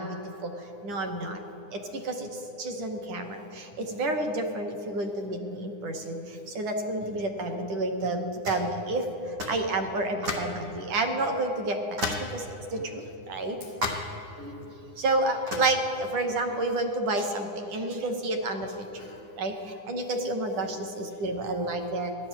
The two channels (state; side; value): late; left; 9.9 ms